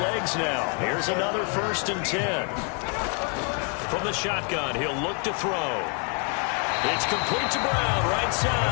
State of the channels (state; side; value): quieter; right; 39.1 dB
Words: now. Here's another 1st and 10. From the shotgun, he'll look to throw. It's complete to Brown, right